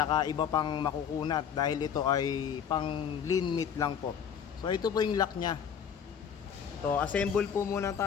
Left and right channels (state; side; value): quieter; right; 7.8 dB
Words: iba pang makukunat dahil ito ay pang lean meat lang po. So ito po yung lock nya. So assemble po muna